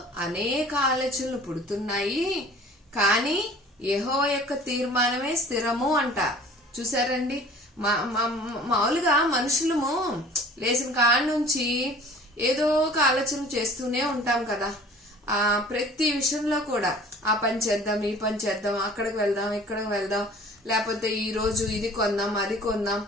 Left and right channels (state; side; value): normal; both; correlation 0.47